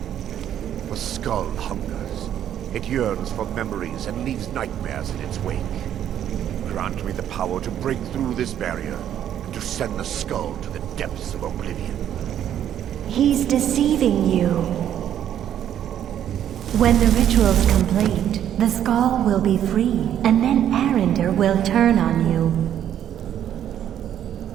The skull hungers. It yearns for memories and leaves nightmares in its wake. Grant me the power to break through this barrier and to send the skull to the depths of oblivion. He's deceiving you. When the ritual's complete, the skull will be free, and then Arender will turn on you.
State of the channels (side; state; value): left; quieter; 10.4 dB